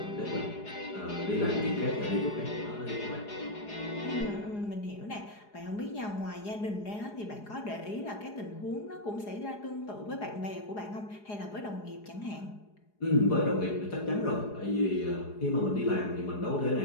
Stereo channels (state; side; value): late; right; 4.8 ms